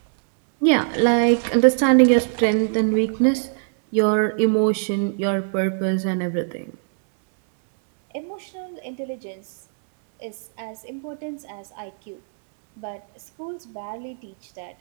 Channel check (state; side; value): silent; left; 64 dB below the other